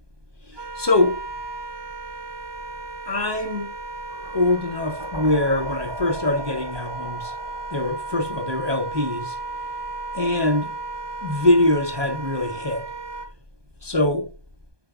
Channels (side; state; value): left; late; 1.2 ms